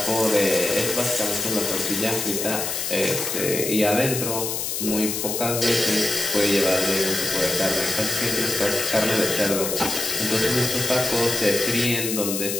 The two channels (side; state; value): left; noise; hiss, 2 dB below the sound